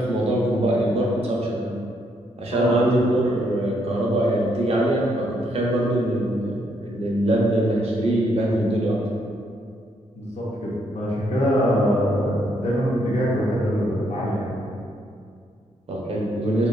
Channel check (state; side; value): normal; both; correlation 0.74